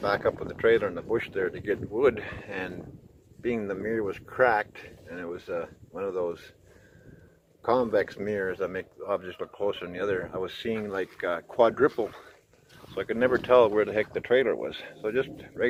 back up with the trailer in the bush there to get wood, and being the mirror was cracked, and it was one of those convex mirrors that make objects look closer than the other, I was seeing like quadruple, so I could never tell where the heck the trailer was. So just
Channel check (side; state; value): both; identical; correlation 1.00